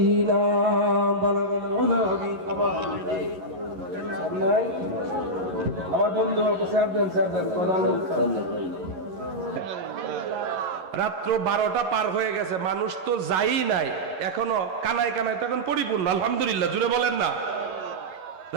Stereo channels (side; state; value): left; late; 11 ms